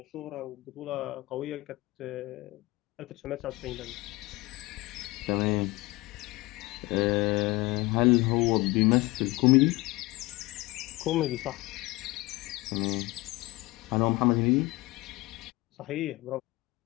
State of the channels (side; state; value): right; quieter; 21.6 dB